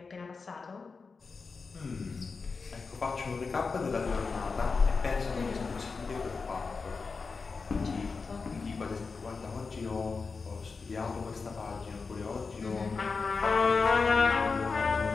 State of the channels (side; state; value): right; quieter; 4.6 dB